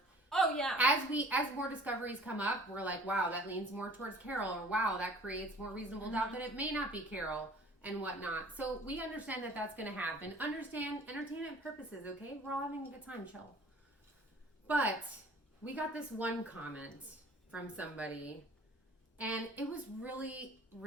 Oh yeah. As more discoveries come up, we're like, wow, that leans more towards Carol, or wow, that creates more reasonable doubt that it may not be Carol and whatnot. So we understand that that's going to happen. Understand entertainment purposes, okay? We're all having a good time, chill. But we got this one comment from somebody, and it was really,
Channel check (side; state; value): both; normal; correlation 0.50